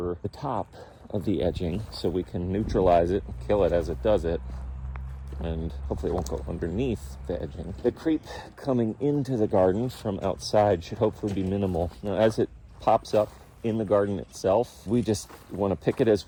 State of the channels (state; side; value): identical; both; correlation 1.00